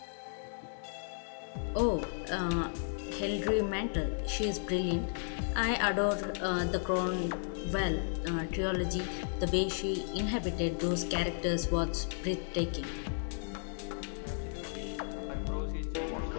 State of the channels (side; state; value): right; silent; digital silence